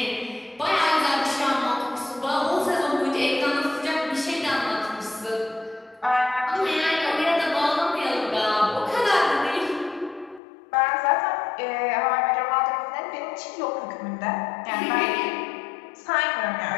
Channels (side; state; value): right; drops out; at 10.4 s